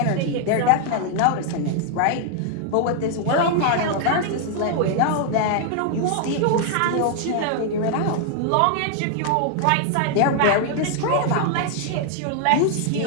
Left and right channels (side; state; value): both; different; correlation 0.00